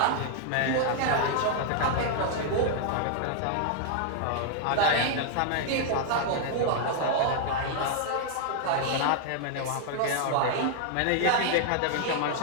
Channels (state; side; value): different; both; correlation 0.00